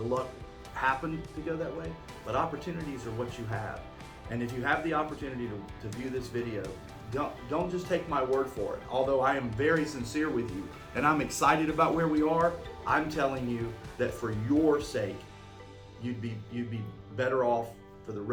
luck happened to go that way. But opportunities are what you have. And if you have the opportunity to view this video, don't just take my word for it. Although I am very sincere with you and I'm excited about where we are, I'm telling you that for your sake, you'd be better off for the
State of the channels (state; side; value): identical; both; correlation 1.00